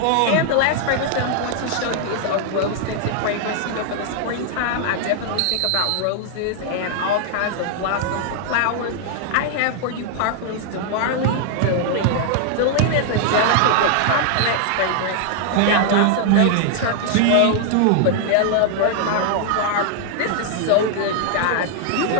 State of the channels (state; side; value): different; both; correlation 0.00